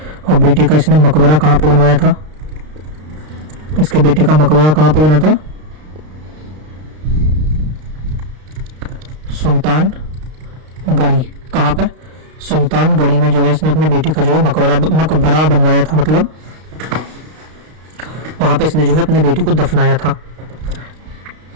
और बेटे का इसने मकबरा कहाँ पे बनवाया था? इसके बेटे का मकबरा कहाँ पे बना था? सुल्तान गढ़ी। कहाँ पे? सुल्तान गढ़ी में जो है इसने अपने बेटे का जो है मकबरा बनवाया था, मतलब वहां पे इसने जो है अपने बेटे को दफनाया था।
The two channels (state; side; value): late; left; 32 ms